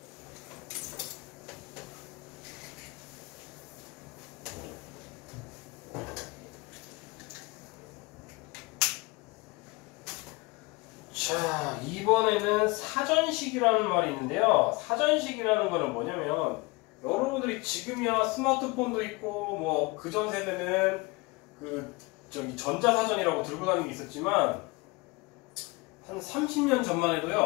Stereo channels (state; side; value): quieter; right; 25.1 dB